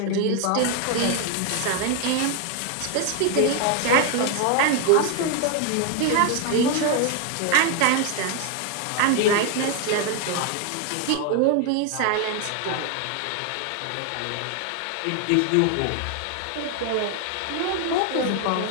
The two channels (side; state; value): both; different; correlation 0.01